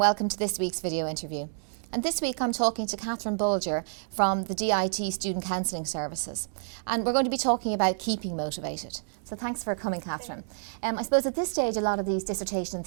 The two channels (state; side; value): silent; left; digital silence